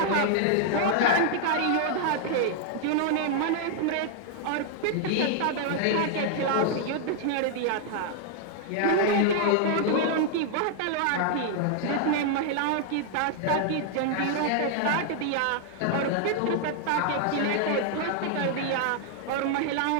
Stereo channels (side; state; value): both; different; correlation 0.00